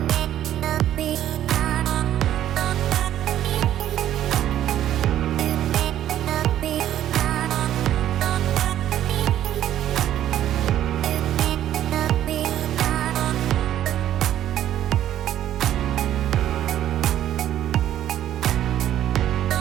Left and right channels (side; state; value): left; quieter; 11.8 dB